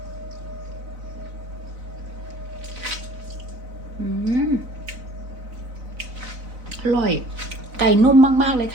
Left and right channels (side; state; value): left; late; 4.0 ms